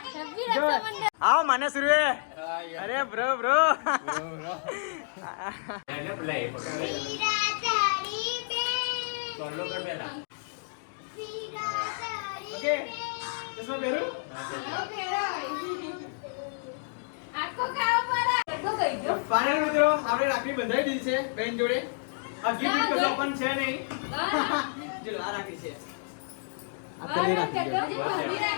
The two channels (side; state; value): right; silent; digital silence